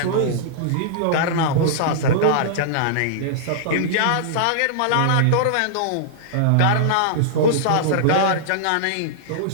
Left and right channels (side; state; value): both; different; correlation -0.02